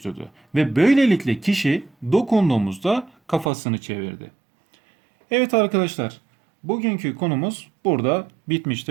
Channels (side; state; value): left; drops out; at 3.5 s